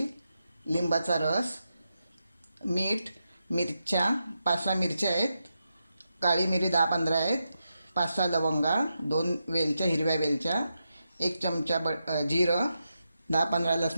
लिंबाचा रस, मीठ, मिरच्या 5-6 मिरच्या आहेत, काळी मिरी 10-15 आहेत, 5-6 लवंगा, 2 वेलच्या, हिरव्या वेलच्या, 1 चमचा जिरं, 10-15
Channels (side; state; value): both; inverted; correlation -0.87